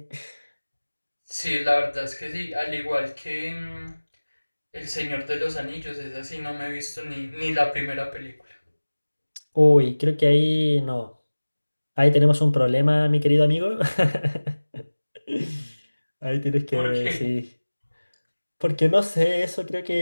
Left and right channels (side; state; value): both; inverted; correlation -1.00